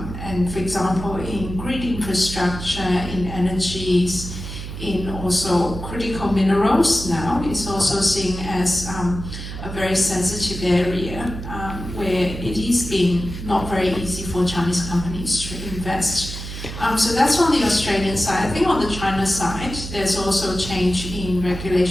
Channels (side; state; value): right; noise; hum, 9 dB below the sound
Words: And for example, in grid infrastructure, in energies, in also critical minerals now, it's also seen as a very sensitive area where it is being not very easy for Chinese companies to invest. So that's on the Australian side. I think on the China side, there's also change in